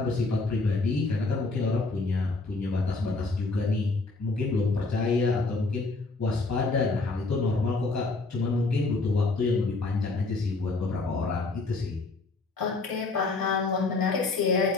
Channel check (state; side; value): quieter; right; 3.6 dB